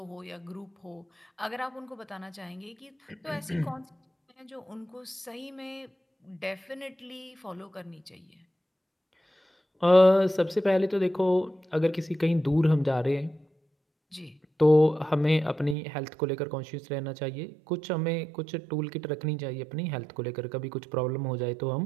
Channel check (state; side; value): drops out; left; at 15.8 s